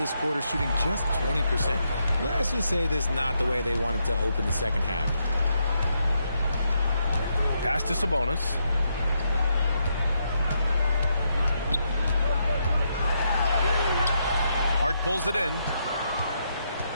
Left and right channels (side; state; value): both; inverted; correlation -0.79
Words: quarter shooting just 20%. Let's just say this is not the way they wanted to open the second half. Pass to Sabonis. Hart pulls it in.